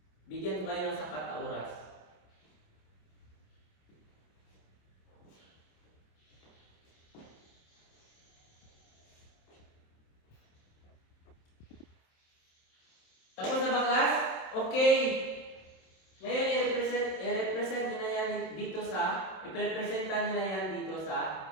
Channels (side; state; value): right; late; 27 ms